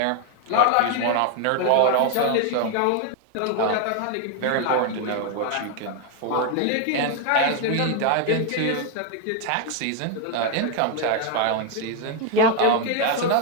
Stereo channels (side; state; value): both; different; correlation 0.01